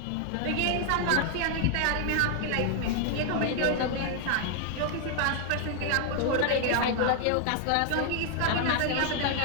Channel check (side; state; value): both; different; correlation 0.00